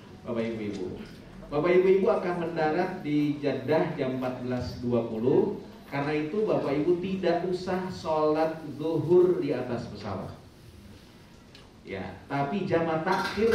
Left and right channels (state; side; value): identical; both; correlation 1.00